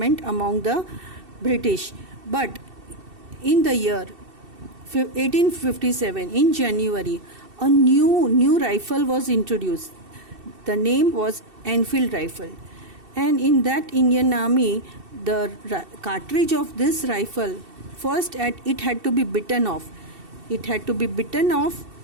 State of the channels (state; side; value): late; left; 2.7 ms